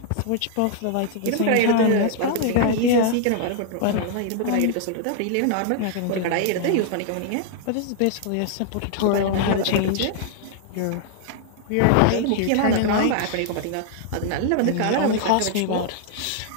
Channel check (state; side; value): different; both; correlation -0.01